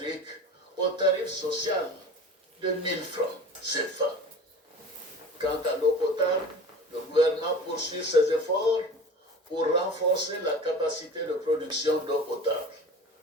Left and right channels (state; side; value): normal; both; correlation 0.37